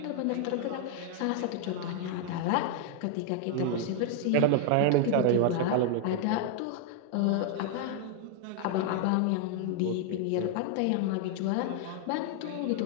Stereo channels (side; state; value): both; different; correlation 0.00